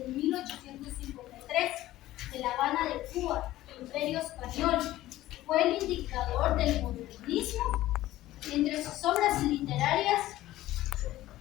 1853 de La Habana de Cuba, Imperio Español. Fue el indicador del modernismo. Entre sus obras literarias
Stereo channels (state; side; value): quieter; right; 15.4 dB